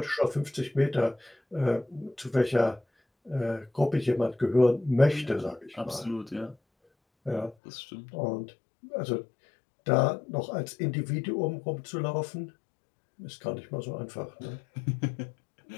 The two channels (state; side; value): drops out; right; at 7.6 s